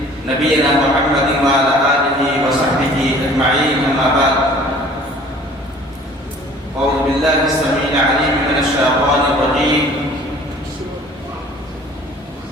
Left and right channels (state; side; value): normal; both; correlation 0.50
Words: نبينا محمد وعلى آله وصحبه أجمعين أما بعد أعوذ بالله السميع العليم من الشيطان الرجيم